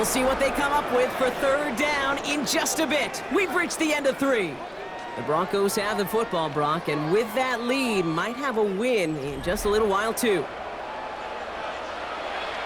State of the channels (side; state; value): both; identical; correlation 1.00